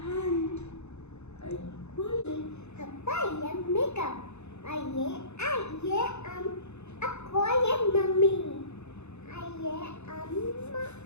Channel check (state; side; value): late; right; 0.81 ms